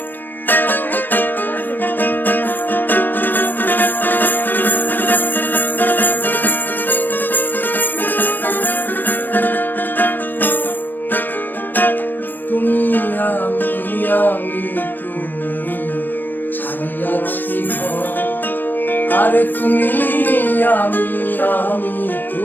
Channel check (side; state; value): right; late; 0.092 ms